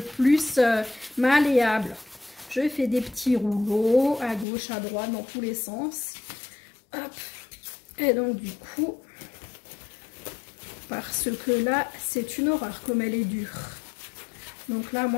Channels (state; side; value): drops out; right; at 4.5 s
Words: malléable. Je fais des petits rouleaux à gauche, à droite, dans tous les sens. Hop. Et donc du coup, parce que là, c'est une horreur comme elle est dure. Donc là,